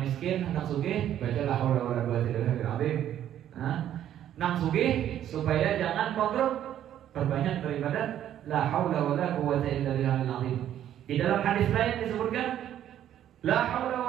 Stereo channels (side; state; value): left; quieter; 11.1 dB